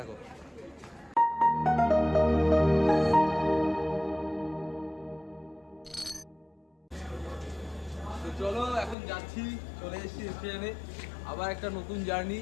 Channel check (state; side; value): drops out; right; at 9.0 s